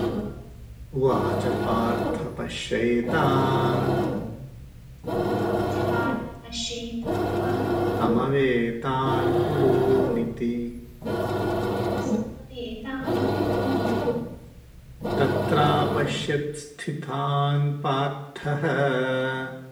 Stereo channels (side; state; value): both; identical; correlation 1.00